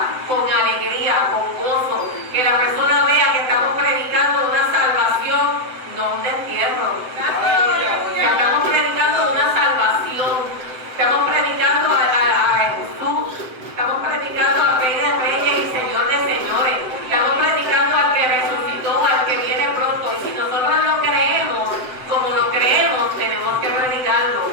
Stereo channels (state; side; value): late; left; 7.9 ms